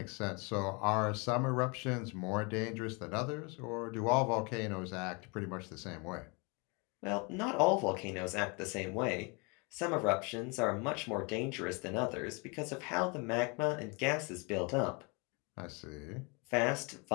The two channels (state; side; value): quieter; right; 30.9 dB